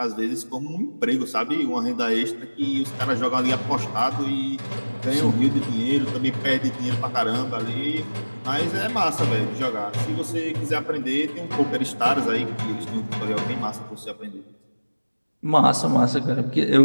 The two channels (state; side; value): inverted; both; correlation -1.00